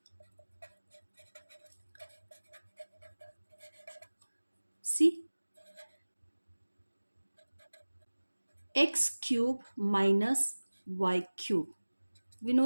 see, x cube minus y cube. We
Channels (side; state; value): both; inverted; correlation -1.00